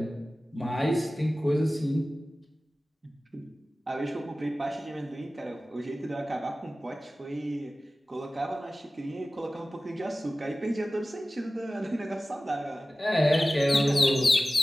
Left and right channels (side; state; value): both; normal; correlation 0.96